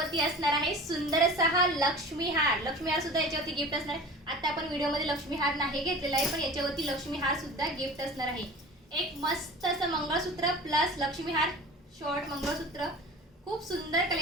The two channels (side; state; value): both; normal; correlation 0.38